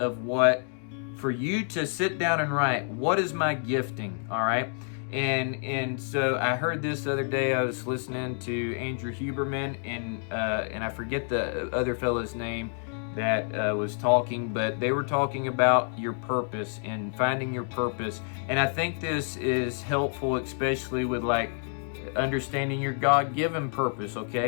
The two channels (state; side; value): silent; right; 59 dB below the other